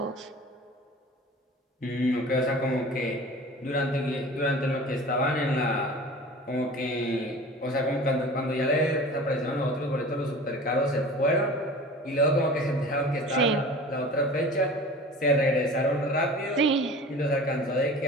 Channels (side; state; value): both; normal; correlation 0.39